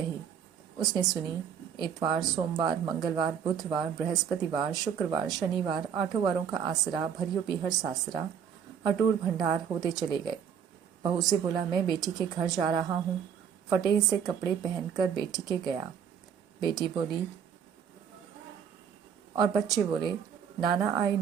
उसने सुनी। इतवार, सोमवार, मंगलवार, बुधवार, बृहस्पतिवार, शुक्रवार, शनिवार, 8 वारों का आसरा, भरियो पीहर सासरा, अटूट भंडार होते चले गए। बहू से बोला, मैं बेटी के घर जा रहा हूँ। फटे से कपड़े पहनकर बेटी के गया। बेटी बोली और बच्चे बोले, नाना आए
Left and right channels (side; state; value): left; quieter; 7.8 dB